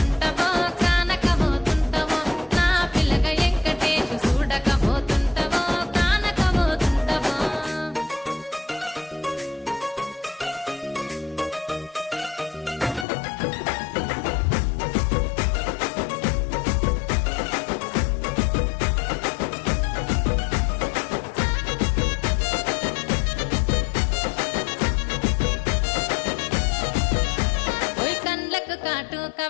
కానకపోతుంటవో నా పిల్లగా ఎంకటేశు చూడకపోతుంటవో కానకపోతుంటవో కాటుక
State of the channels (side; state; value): right; drops out; at 13.1 s